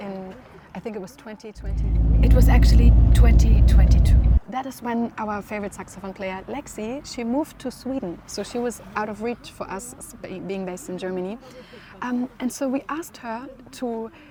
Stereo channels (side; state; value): both; identical; correlation 1.00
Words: I think it was 2020. It was actually 2022. That is when our favorite saxophone player, Lexi, she moved to Sweden. So she was out of reach for us, being based in Germany. And so we asked her to